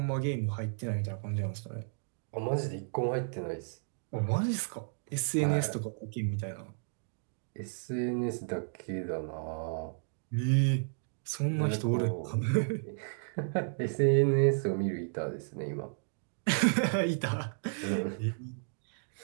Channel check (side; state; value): left; silent; digital silence